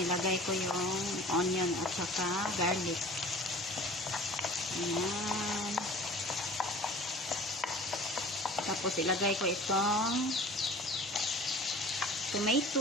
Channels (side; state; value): both; normal; correlation 0.43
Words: ko yung onion at saka garlic. Ayan. Tapos, ilagay ko itong